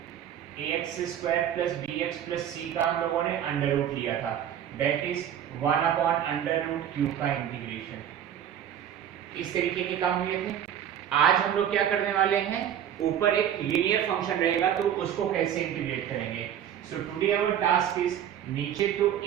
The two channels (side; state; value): left; quieter; 9.9 dB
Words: ax square plus bx plus c का हम लोगों ने under root लिया था, that is 1 upon under root q का integration. इस तरीके के काम हुए थे। आज हम लोग क्या करने वाले हैं, ऊपर एक लीनियर फंक्शन रहेगा तो उसको कैसे इंटीग्रेट करेंगे। So today our task is, नीचे तो